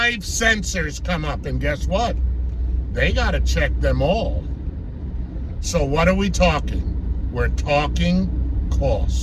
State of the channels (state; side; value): identical; both; correlation 1.00